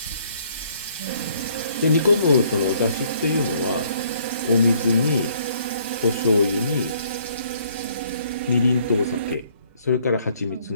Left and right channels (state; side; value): inverted; both; correlation -0.64